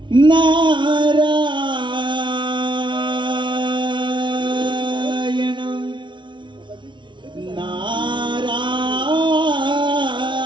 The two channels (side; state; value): left; late; 0.23 ms